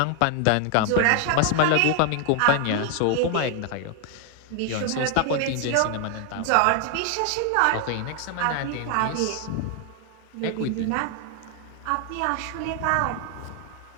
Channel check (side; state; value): both; different; correlation 0.00